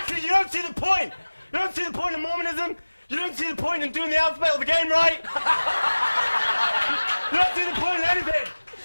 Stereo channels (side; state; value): both; inverted; correlation -1.00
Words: you don't see the point! You don't see the point in Mormonism? You don't see the point in doing the alphabet of the game right? You don't see the point in anything!